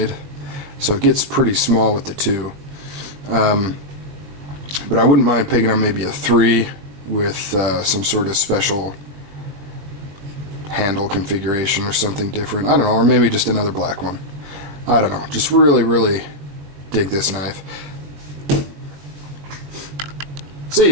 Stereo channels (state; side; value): late; left; 20 ms